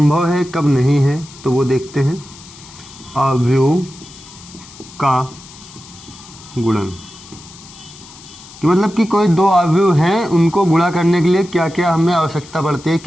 है कब नहीं है। तो वो देखते हैं, अवयव का गुणन कि मतलब कि कोई दो अवयव हैं, उनको गुणा करने के लिए क्या क्या हमें आवश्यकता पड़ती है,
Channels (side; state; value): left; noise; hiss, 19 dB below the sound